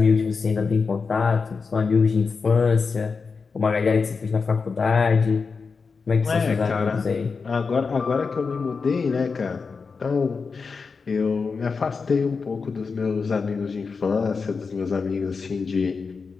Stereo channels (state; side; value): quieter; right; 4.9 dB